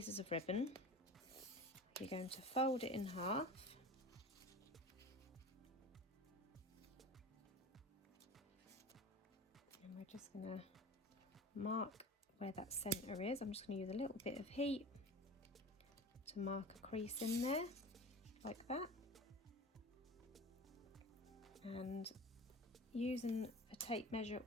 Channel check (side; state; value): both; normal; correlation 0.35